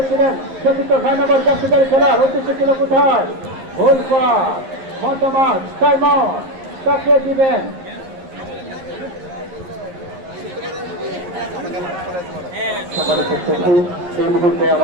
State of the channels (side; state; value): left; late; 11 ms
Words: চতুর্থ 6 নম্বর জাতীয় খেলার উদ্দেশ্য ছিল কোথায় গোল পার মতামত সাইমন তাকে দিবেন। সম্মানিত সচিব এই মুহূর্তে